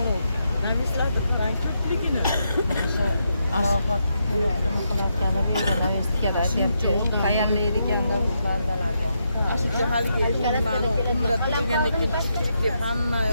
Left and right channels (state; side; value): inverted; both; correlation -0.81